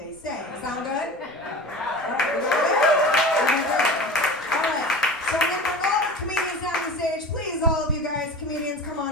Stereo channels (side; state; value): both; normal; correlation 0.34